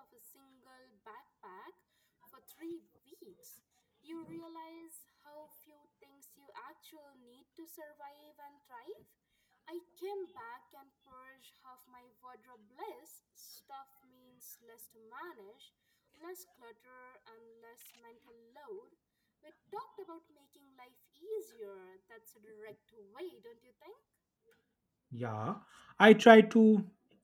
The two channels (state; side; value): identical; both; correlation 1.00